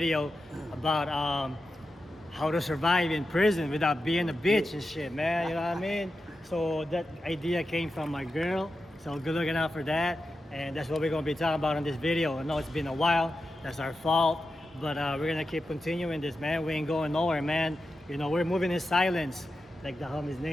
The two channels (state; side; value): normal; both; correlation 0.90